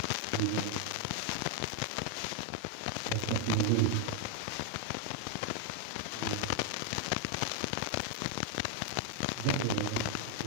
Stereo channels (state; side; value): different; both; correlation 0.00